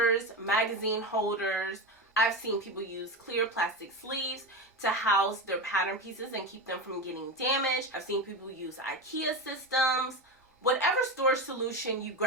magazine holders. I've seen people use clear plastic sleeves to house their pattern pieces and keep them from getting damaged. I've seen people use IKEA systems. Whatever storage solution you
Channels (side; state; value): both; normal; correlation 0.19